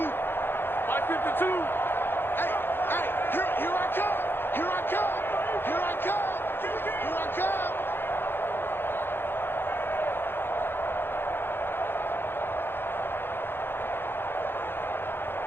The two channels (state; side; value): late; right; 0.10 ms